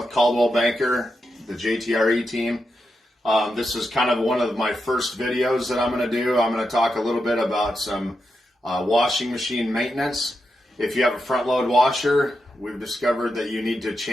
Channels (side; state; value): both; normal; correlation 0.86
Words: Caldwell Banker, the JTRE team. This is kind of one of my first videos that I'm going to do. I'm going to talk a little bit about some washing machine maintenance. If you have a front load washer, we've discovered that you need to